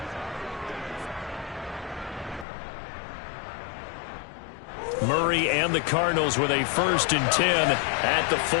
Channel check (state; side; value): drops out; right; at 2.5 s